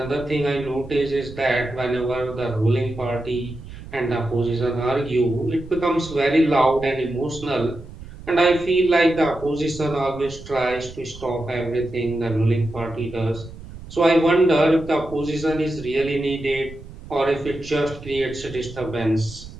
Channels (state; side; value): noise; right; rumble, 15 dB below the sound